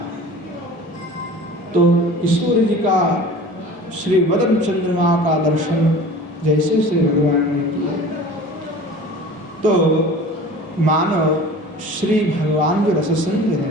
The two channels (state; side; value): normal; both; correlation 0.41